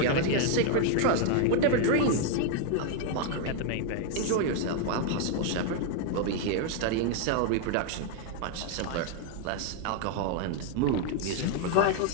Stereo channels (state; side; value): different; both; correlation 0.01